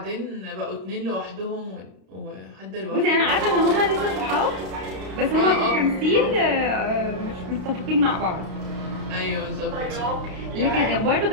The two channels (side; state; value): left; late; 32 ms